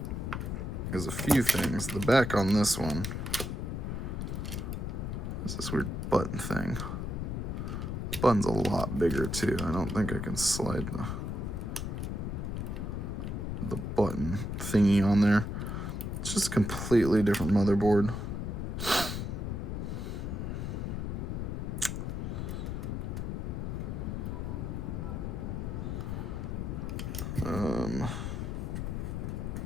is a few things. The back on this one is this weird button thing. The button's a lot bigger too. I don't think I can slide the button thingy on there. It's just a completely different motherboard.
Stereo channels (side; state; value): left; noise; rumble, 3 dB below the sound